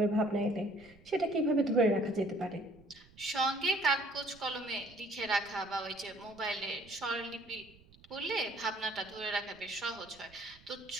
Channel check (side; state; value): right; noise; rumble, 25 dB below the sound